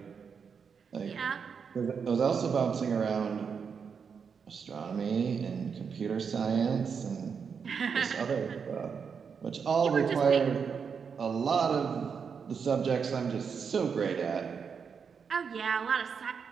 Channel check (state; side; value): quieter; left; 6.3 dB